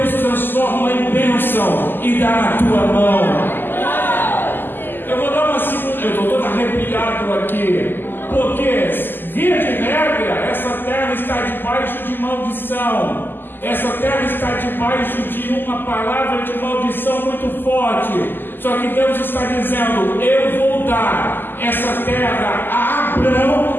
transforma em bênção e dá na tua mão. Eu vou dar uma segunda, eu estou todo arrepiado aqui, porque via de regra, essa terra está debaixo de maldição. Essa terra está debaixo de uma palavra de maldição muito forte. Só que Deus está dizendo: eu vou dar essa terra a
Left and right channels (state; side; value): late; right; 0.093 ms